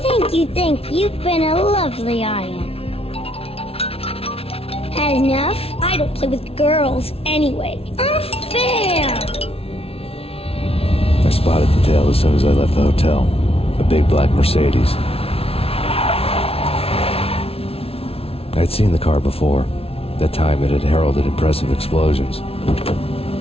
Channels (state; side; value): late; right; 0.28 ms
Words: you. You've been a lovely audience. Had enough? I don't play with girls anyway. Unfair! I spotted the tail as soon as I left the hotel. A big black Mercedes. I'd seen the car before. That time it had heralded impressive explosions.